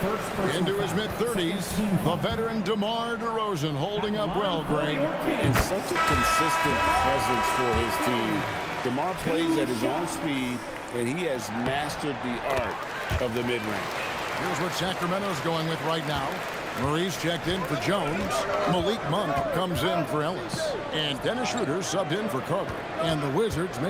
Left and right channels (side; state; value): both; identical; correlation 1.00